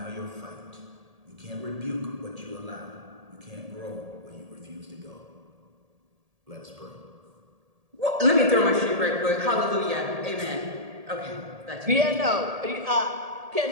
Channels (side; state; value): left; late; 1.8 ms